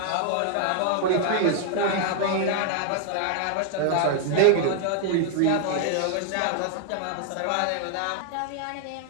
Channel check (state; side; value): different; both; correlation 0.00